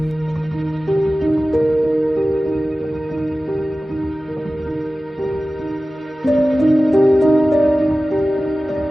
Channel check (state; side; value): normal; both; correlation 0.96